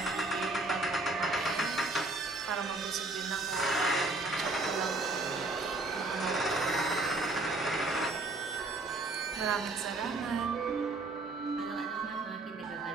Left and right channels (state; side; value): quieter; left; 3.1 dB